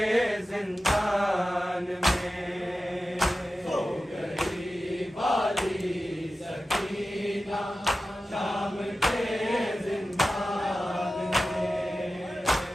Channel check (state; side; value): normal; both; correlation 0.94